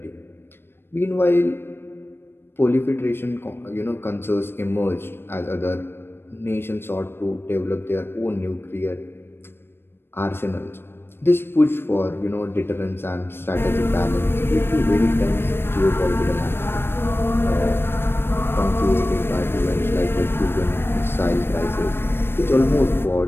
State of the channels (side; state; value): right; late; 0.11 ms